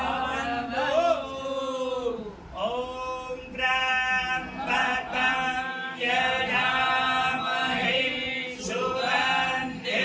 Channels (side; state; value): both; identical; correlation 1.00